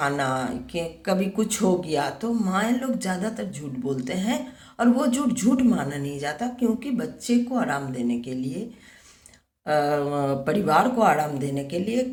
कि कभी कुछ हो गया, तो माँ लोग ज़्यादातर झूठ बोलते हैं। और वो झूठ झूठ माना नहीं जाता, क्योंकि बच्चे को आराम देने के लिए, परिवार को आराम देने के लिए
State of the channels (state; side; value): identical; both; correlation 1.00